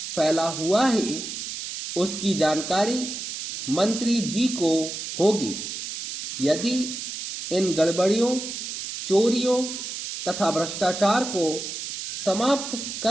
फैला हुआ है, उसकी जानकारी मंत्री जी को होगी। यदि इन गड़बड़ियों, चोरियों तथा भ्रष्टाचार को समाप्त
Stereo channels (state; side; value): noise; right; hiss, 7 dB below the sound